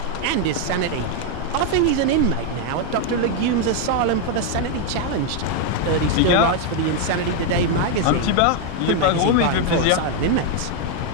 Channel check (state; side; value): different; both; correlation 0.01